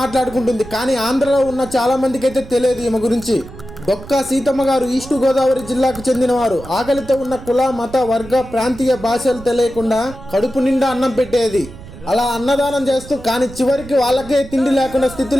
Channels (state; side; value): noise; right; rumble, 16 dB below the sound